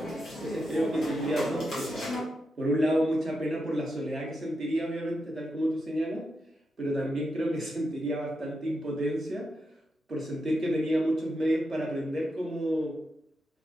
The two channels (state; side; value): normal; both; correlation 0.86